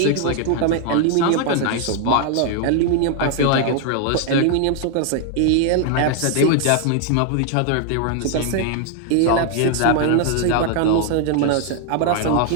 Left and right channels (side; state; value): both; different; correlation 0.00